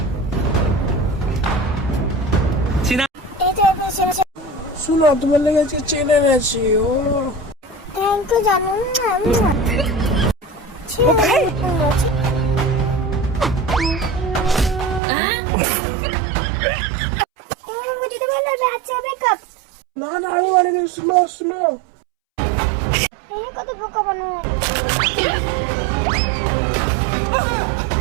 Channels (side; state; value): left; drops out; at 15.0 s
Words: এই তো শুনো তোমার লেগে আজকে চেনে এনেছি ও থ্যাংক ইউ জানু যদি বললো আচ্ছা বেকআপ না না আমি মানে শুনো শুনো কত বোকা বানানো